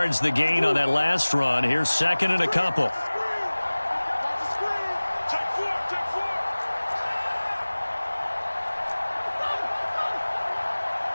the gain on that last run. Here's second and a couple.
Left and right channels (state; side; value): inverted; both; correlation -1.00